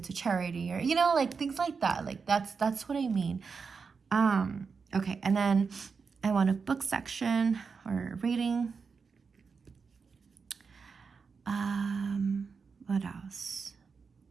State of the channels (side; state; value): left; quieter; 5.3 dB